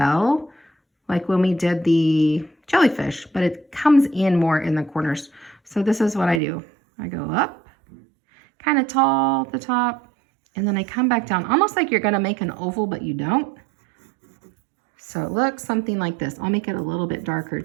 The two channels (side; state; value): left; drops out; at 6.4 s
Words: like when we did the jellyfish, but it comes in more in the corners. So this is what I do. I go up, kind of tall at the top, and then I come back down, almost like you're gonna make an oval, but you don't. So it looks something like this. I'll make it a little bit darker